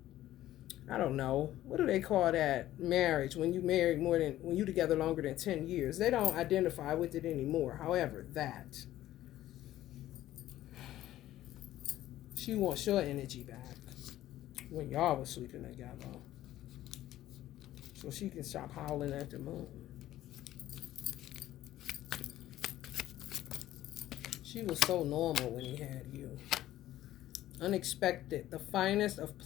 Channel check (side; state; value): right; quieter; 14.0 dB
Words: I don't know. What do they call that? Marriage. When you married when you together longer than 10 years. They don't identify with it anymore. However, that. She wants your energy back. When y'all was sleeping together. So she can stop howling at the moon. She was so normal when he had you. Unexpected. The finest of